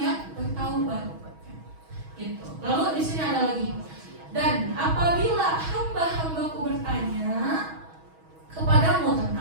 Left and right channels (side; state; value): left; late; 6.2 ms